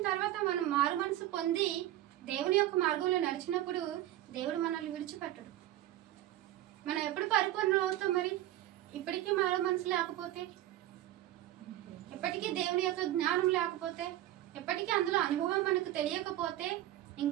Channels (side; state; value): left; quieter; 14.2 dB